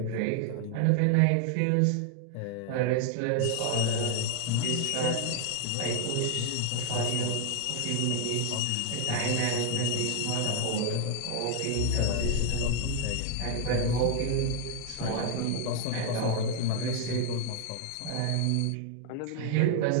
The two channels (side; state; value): both; different; correlation 0.00